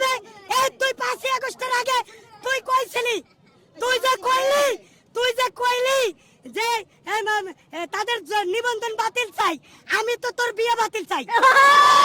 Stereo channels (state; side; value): identical; both; correlation 1.00